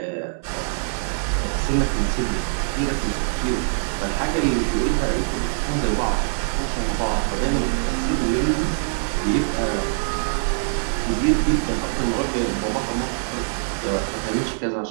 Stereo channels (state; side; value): silent; left; digital silence